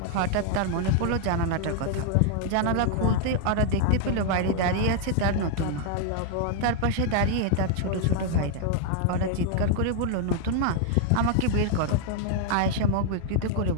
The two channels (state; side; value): different; both; correlation 0.00